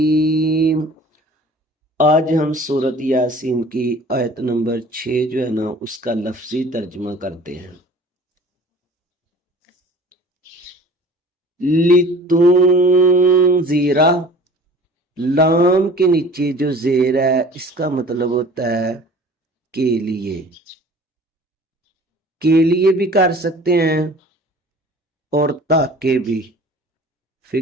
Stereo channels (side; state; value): both; normal; correlation 0.46